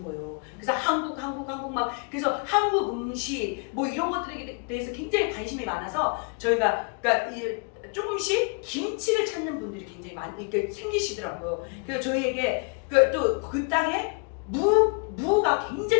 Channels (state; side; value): quieter; right; 37.3 dB